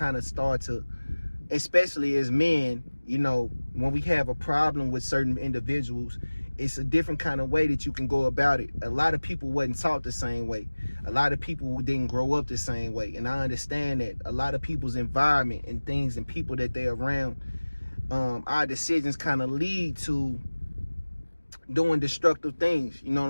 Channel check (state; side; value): inverted; both; correlation -1.00